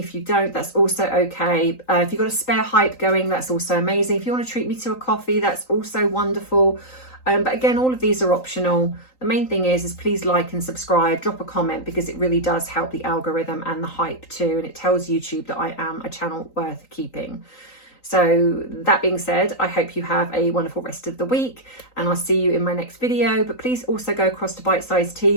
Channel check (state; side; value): late; right; 3.9 ms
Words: you don't, that's also okay. If you've got a spare hype going, that's also amazing. If you want to treat me to a coffee, that's also wonderful. But again, all of these are optional. The main thing is please like and subscribe, drop a comment, because it really does help the algorithm and the hype too. And it tells YouTube that I am a channel worth keeping. So that being said, I hope you have a wonderful rest of the week, and I'll see you in my next video. But please also go across to Bite Size Tea,